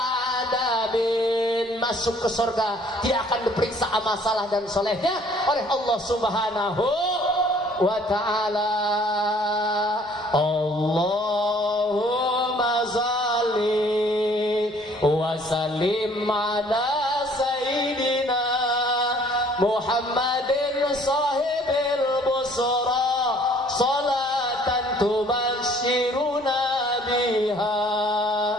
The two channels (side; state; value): right; noise; rumble, 29 dB below the sound